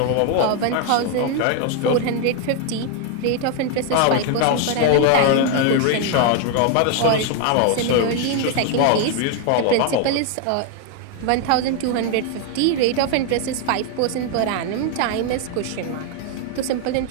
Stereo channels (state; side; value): different; both; correlation 0.01